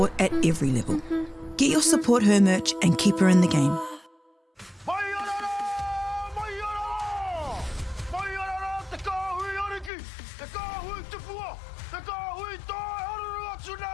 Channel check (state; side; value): drops out; right; at 9.9 s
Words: at every level. Get your Support Her merch and keep her in the game.